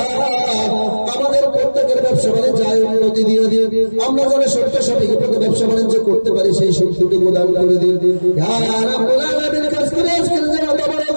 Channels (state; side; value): inverted; both; correlation -1.00